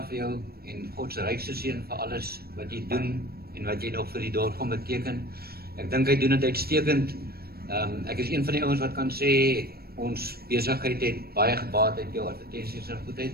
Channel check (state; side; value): late; left; 0.45 ms